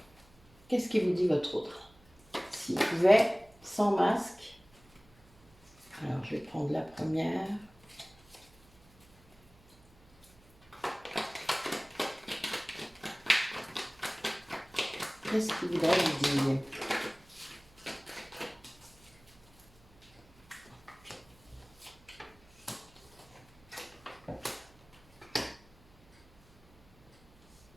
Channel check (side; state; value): right; noise; hum, 28 dB below the sound